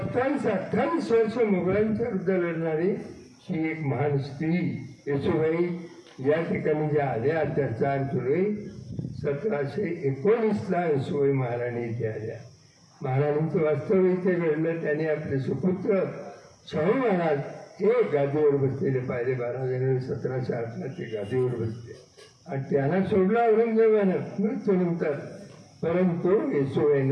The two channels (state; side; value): identical; both; correlation 1.00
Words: वर्ष मुघलांच्या विरुद्ध लढणारी ही एक महान स्त्री येसूबाई या ठिकाणी ज्या आल्या त्या 4 जुलै 1719ला येसूबाई महाराणी इथे आल्या. महाराणींचं वास्तव इथे घडलं. त्यांनी आपले सुपुत्र शाहू महाराज हे गादीवर बसलेले पाहिले. 12 जानेवारी 1708ला ते गादीवर बसले आणि त्यांना सोडलं औरंगजेबानं मृत्यूनंतर, परंतु